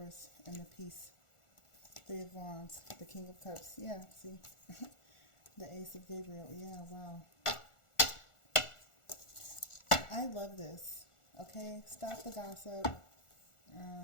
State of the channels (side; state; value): right; late; 1.4 ms